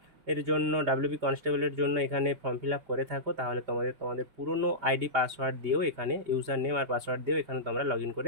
জন্য ডাব্লিউবি কনস্টেবলের জন্য এখানে ফর্ম ফিল আপ করে থাকো, তাহলে তোমাদের পুরনো আইডি পাসওয়ার্ড দিয়েও এখানে ইউজার নেম আর পাসওয়ার্ড দিয়েও এখানে তোমরা লগ ইন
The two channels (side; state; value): left; late; 5.0 ms